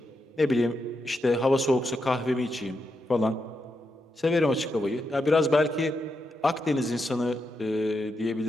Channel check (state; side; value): normal; both; correlation 0.84